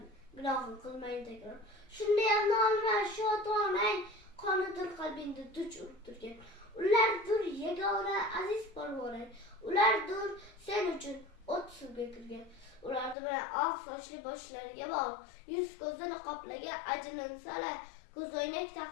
gunohni qilmaydi takror. Shunday ham nolima shu ota-onang qonidir qalbingda duch urib turgan. Ulardir yagona aziz polvonang, ulardir sen uchun o't suvga kirgan. Ularni bilan oq sochli boshlariga bor, yuz ko'zini qoplagan ajinsalar, ko'zoynak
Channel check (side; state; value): right; drops out; at 13.2 s